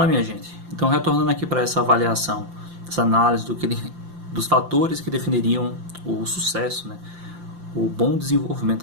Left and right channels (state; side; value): late; left; 5.8 ms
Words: minha gente. Então, retornando aqui para essa avaliação, essa análise dos fatores que definiriam o sucesso, né? O bom